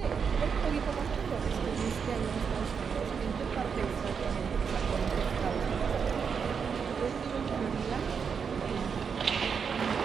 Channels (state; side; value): quieter; left; 6.4 dB